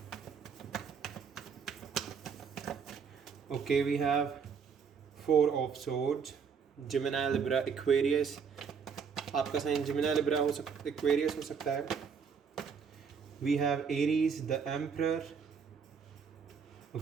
Okay, we have 4 of swords, Gemini, Libra, Aquarius. आपका साइन जिमिनी, लिब्रा हो सकता, एक्वेरियस हो सकता है। We have Aries, the emperor.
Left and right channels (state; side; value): quieter; left; 6.3 dB